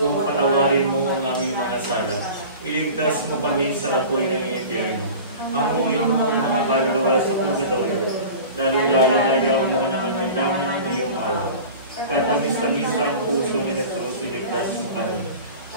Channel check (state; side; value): inverted; both; correlation -0.38